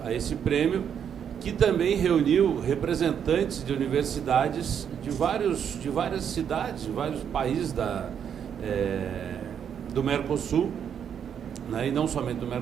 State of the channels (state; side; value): quieter; left; 8.3 dB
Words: a esse prêmio, que também reuniu representantes de universidades de várias cidades, de vários países do Mercosul, né, e não somente do